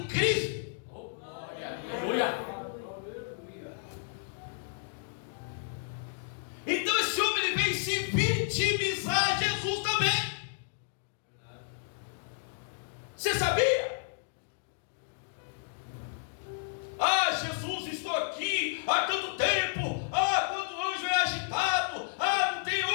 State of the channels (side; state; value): right; silent; digital silence